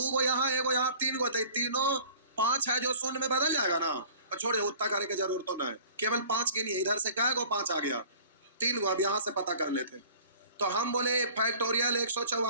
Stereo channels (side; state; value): both; inverted; correlation -0.46